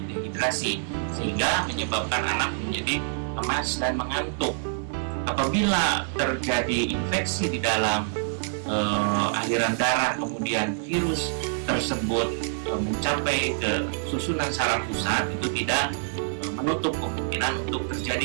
dehidrasi, sehingga menyebabkan anak menjadi lemas dan mengantuk. Apabila terjadi infeksi di dalam aliran darah, kemudian virus tersebut mencapai ke susunan saraf pusat, itu tidak menutup kemungkinan untuk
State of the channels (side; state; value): left; silent; 56 dB below the other